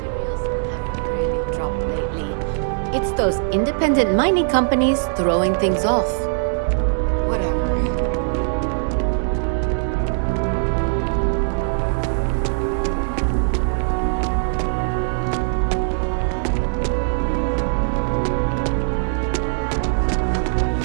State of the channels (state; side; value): silent; left; digital silence